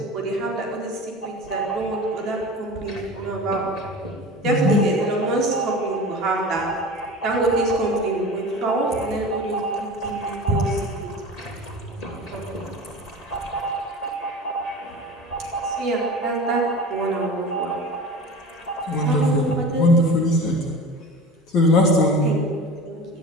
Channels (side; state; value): both; normal; correlation 0.34